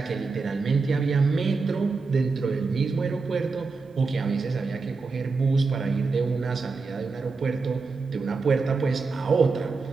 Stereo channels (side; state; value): left; quieter; 4.3 dB